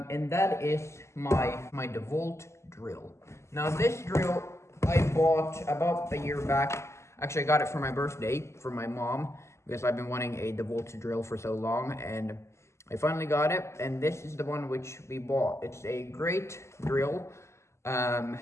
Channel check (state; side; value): late; right; 0.13 ms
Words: that is my Dewalt drill. Now this drill I bought about a year back. Actually, I got it for my birthday from my mom because I've been wanting a Dewalt drill for so long, and I finally got it. And this is the one which we bought. It's a great drill.